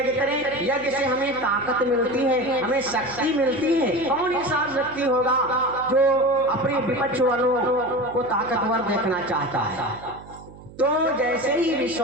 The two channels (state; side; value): noise; right; hum, 19 dB below the sound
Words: करें। यज्ञ से हमें ताकत मिलती है, हमें शक्ति मिलती है। कौन ऐसा व्यक्ति होगा जो अपने विपक्ष वालों को ताकतवर देखना चाहता है? तो जैसे ही